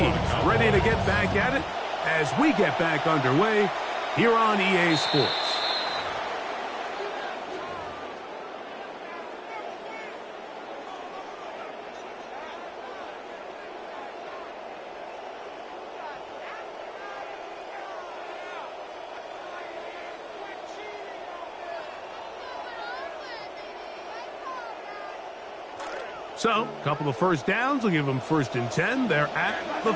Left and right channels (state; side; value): identical; both; correlation 1.00